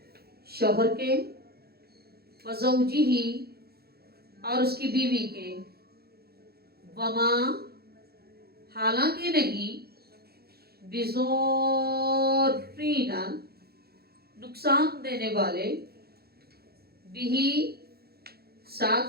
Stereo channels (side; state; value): left; late; 0.46 ms